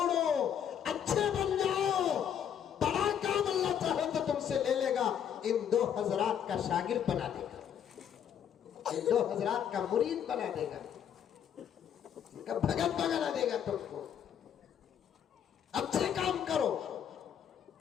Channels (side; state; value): right; quieter; 8.9 dB